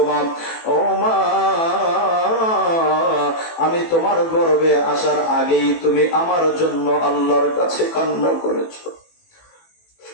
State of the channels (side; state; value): right; late; 18 ms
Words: মা। ও মা, আমি তোমার গর্ভে আসার আগেই তুমি আমার জন্য আল্লাহর কাছে কান্না করেছো।